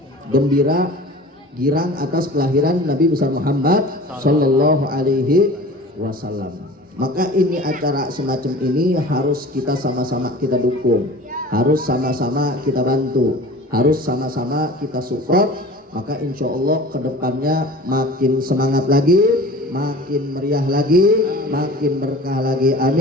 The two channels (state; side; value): normal; both; correlation 0.41